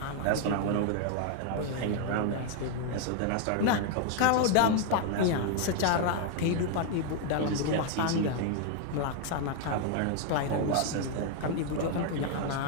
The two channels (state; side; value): different; both; correlation 0.00